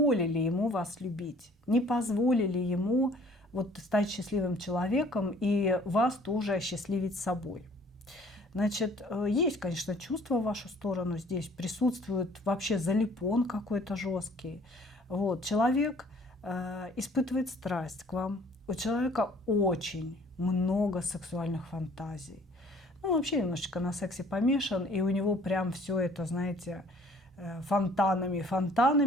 ему вас любить, не позволили ему вот стать счастливым человеком и вас тоже осчастливить собой. Значит, есть, конечно, чувства в вашу сторону, здесь присутствует вообще залипон какой-то жесткий. Вот, человек испытывает страсть к вам, у человека очень много сексуальных фантазий. Ну, вообще немножечко на сексе помешан, и у него прям все это, знаете,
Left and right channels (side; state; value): both; normal; correlation 0.55